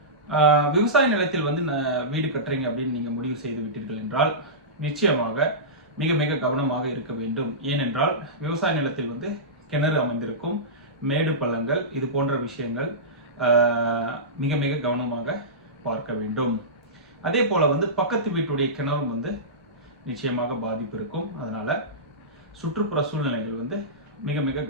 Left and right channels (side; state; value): both; normal; correlation -0.18